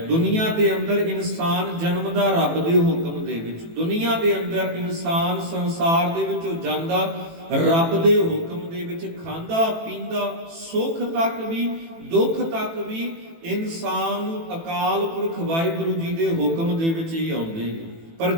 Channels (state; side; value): late; left; 18 ms